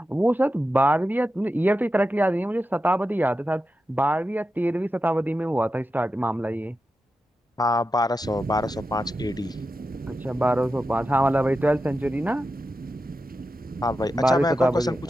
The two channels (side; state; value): both; normal; correlation 0.90